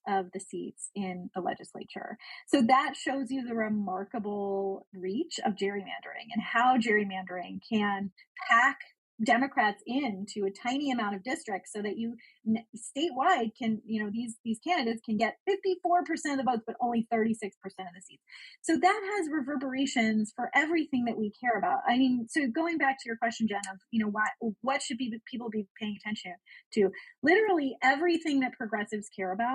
of the seats in the legislature. So that shows you the remarkable reach of gerrymandering and how gerrymandering can pack Democrats into a tiny amount of districts so that you statewide can, these candidates can get 54% of the votes, but only 36% of the seats. So that has reverberations for everything that we care about. I mean, so going back to your question, Jen, of, what should people be paying attention to? Literally everything that progressives care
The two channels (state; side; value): identical; both; correlation 1.00